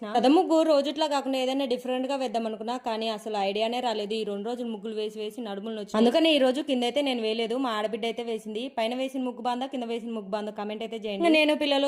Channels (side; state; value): both; identical; correlation 1.00